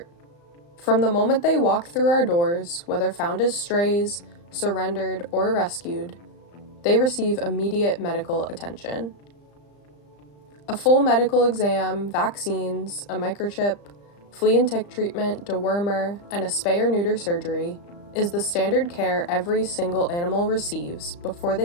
From the moment they walk through our doors, whether found as strays, surrendered, or rescued, they receive immediate medical attention. A full medical exam, vaccines, a microchip, flea and tick treatment, dewormer, and a spay or neuter surgery is the standard care every single animal receives before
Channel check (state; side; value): late; right; 35 ms